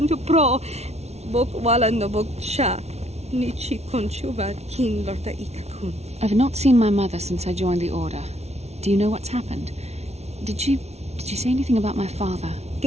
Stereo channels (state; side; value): late; left; 0.31 ms